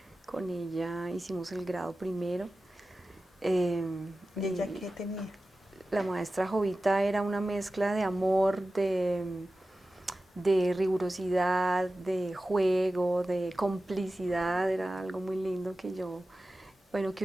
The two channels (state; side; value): normal; both; correlation 0.95